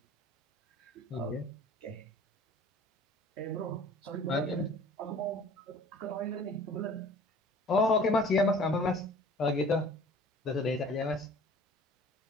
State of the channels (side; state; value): both; normal; correlation 0.48